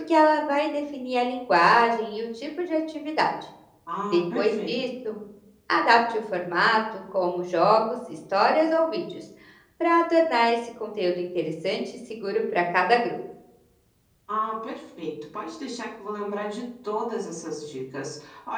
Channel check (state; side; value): identical; both; correlation 1.00